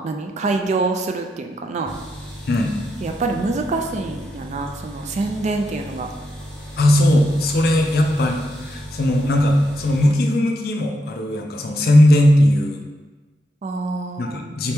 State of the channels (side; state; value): both; normal; correlation 0.83